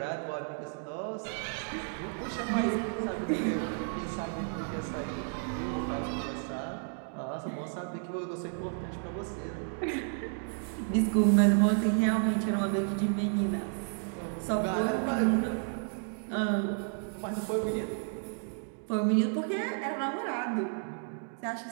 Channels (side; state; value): left; silent; 56 dB below the other